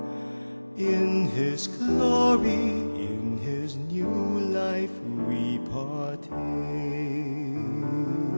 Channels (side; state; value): both; inverted; correlation -1.00